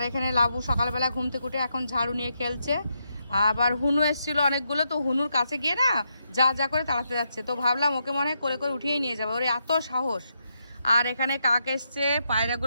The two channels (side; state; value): both; inverted; correlation -0.82